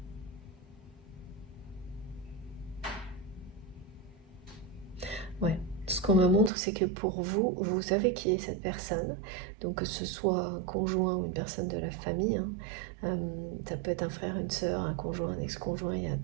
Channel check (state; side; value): drops out; left; at 6.5 s